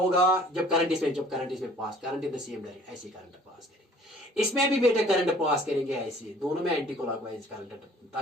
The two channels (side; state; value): both; normal; correlation 0.53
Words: जब करंट इसमें pass, current in the same direction, ऐसे करंट पास करेंगे, इसमें भी बेटा करंट पास करेंगे ऐसे, दोनों में एंटी क्लॉकवाइज करंट,